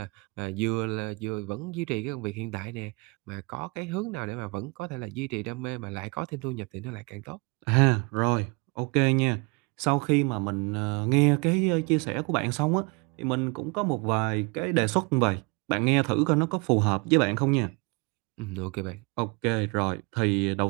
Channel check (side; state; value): left; quieter; 29.0 dB